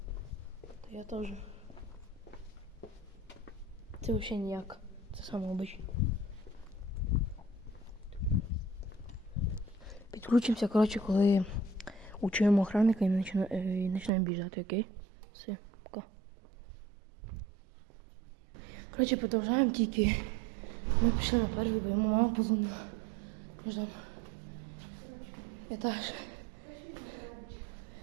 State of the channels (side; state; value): left; drops out; at 14.1 s